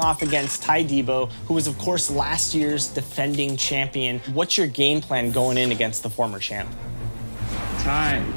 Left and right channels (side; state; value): both; inverted; correlation -1.00